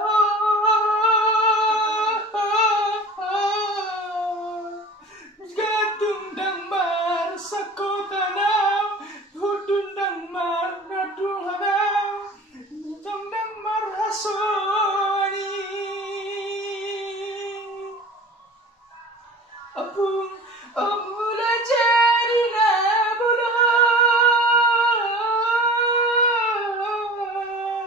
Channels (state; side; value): normal; both; correlation 0.39